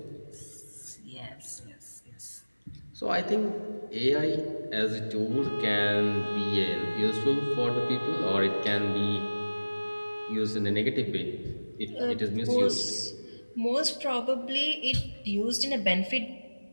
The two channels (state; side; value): inverted; both; correlation -1.00